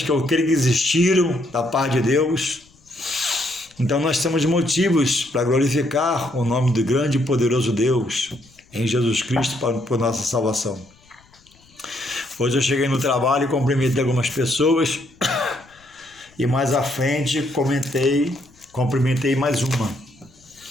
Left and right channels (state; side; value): noise; left; rumble, 30 dB below the sound